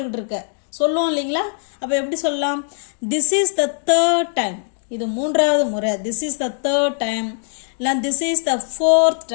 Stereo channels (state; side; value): silent; right; digital silence